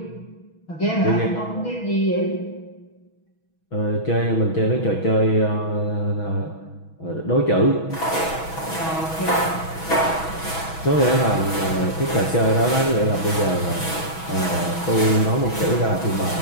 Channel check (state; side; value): late; right; 6.2 ms